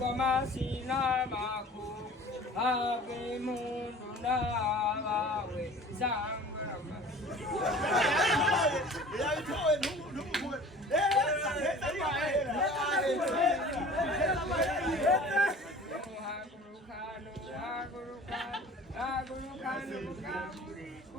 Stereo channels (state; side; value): normal; both; correlation 0.44